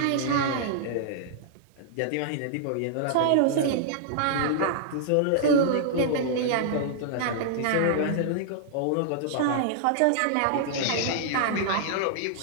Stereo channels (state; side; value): different; both; correlation -0.01